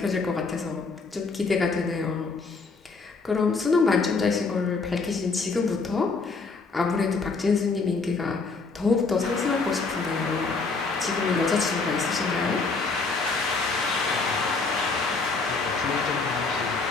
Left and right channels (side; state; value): right; quieter; 4.2 dB